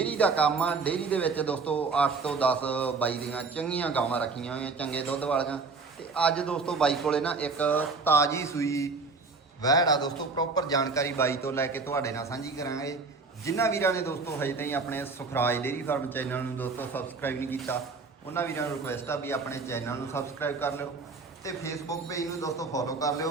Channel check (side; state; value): left; quieter; 4.2 dB